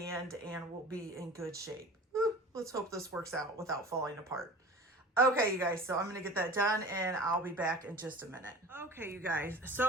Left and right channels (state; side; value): normal; both; correlation 0.38